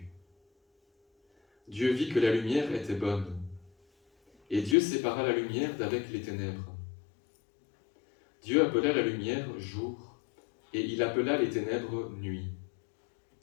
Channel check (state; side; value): drops out; right; at 4.8 s